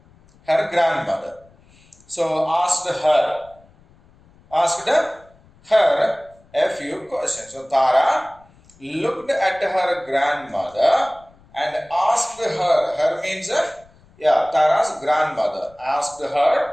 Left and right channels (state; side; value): noise; left; rumble, 29 dB below the sound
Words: Her grandmother. So asked her a few questions. So Tara looked at her grandmother and asked her. Her means Tara's grandmother asked